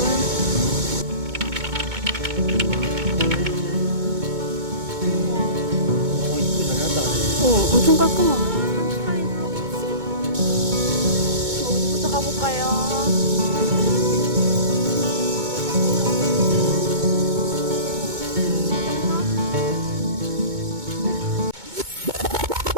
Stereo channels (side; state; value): left; late; 2.2 ms